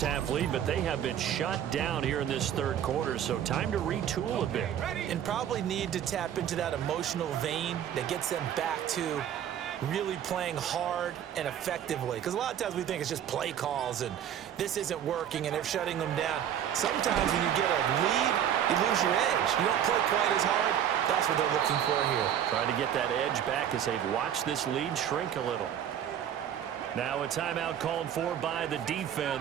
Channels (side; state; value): left; quieter; 9.9 dB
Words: lead, but they have been shut down here in this third quarter, so time to retool a bit. And probably need to tap into that emotional vein that gets them back to really playing hard and effectively. Because a lot of times we think it's just play calls and this isn't working and they're shutting them down. Sometimes when you get a lead, you lose your edge. You don't play quite as hard. That's what they're looking for here. Trying to get that edge back as they've watched this lead shrink a little. Now a timeout called for by the